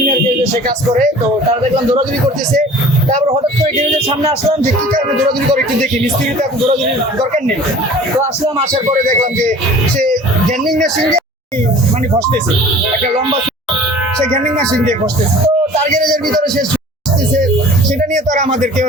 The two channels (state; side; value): normal; both; correlation 0.45